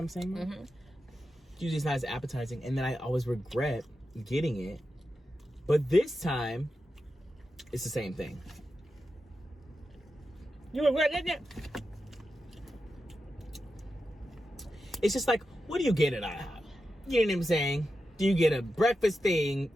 I'm saying? Mm-hmm. Usually it's not as appetizing, and then I always regret getting it. But this time, it's the same thing. You regret getting it? It's just like, what do you get at IHOP? You know what I'm saying? Do you get a breakfast thing,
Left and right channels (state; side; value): normal; both; correlation 0.90